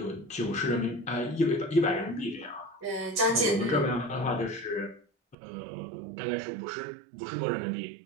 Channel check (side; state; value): left; drops out; at 5.4 s